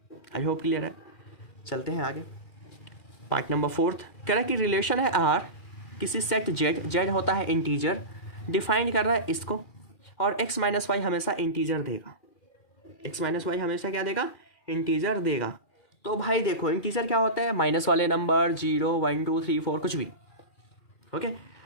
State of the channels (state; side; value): late; right; 2.4 ms